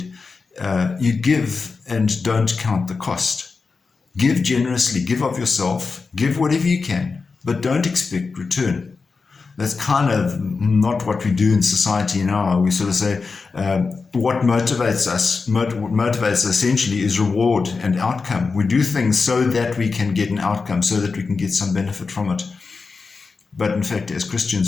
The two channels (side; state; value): right; quieter; 4.6 dB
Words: you give and don't count the cost. Give generously, give of yourself, give whatever you can, but don't expect return. That's kind of not what we do in society now. We sort of say what motivates us. What motivates us essentially is reward and outcome. We do things so that we can get an outcome, so that we can get some benefit from it. But in fact, as